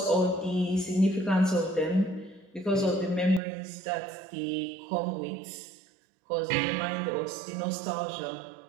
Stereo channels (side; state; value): left; drops out; at 3.4 s